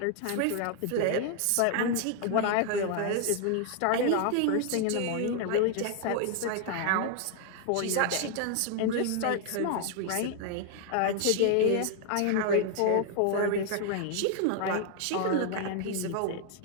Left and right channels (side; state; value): both; different; correlation 0.00